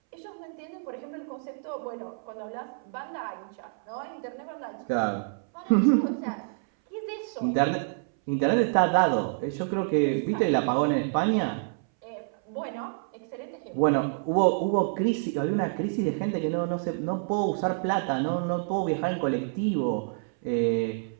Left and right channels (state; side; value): silent; left; 59 dB below the other